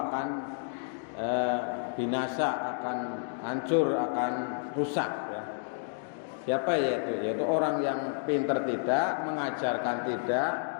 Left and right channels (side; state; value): right; silent; digital silence